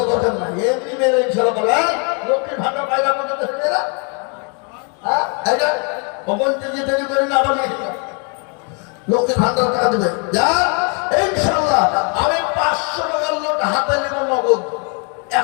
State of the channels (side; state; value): right; quieter; 37.2 dB